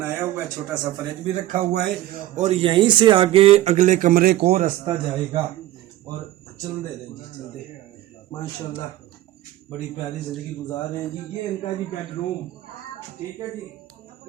हुआ है। छोटा सा फ्रिज भी रखा हुआ है और यहीं से आगे अगले कमरे को रास्ता जाएगा। और चल दे रहे जी, चल दे माशाल्लाह बड़ी प्यारी ज़िंदगी गुजार रहे हैं जी। ये इनका जी बेडरूम, ठीक है जी,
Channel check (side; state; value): left; quieter; 14.7 dB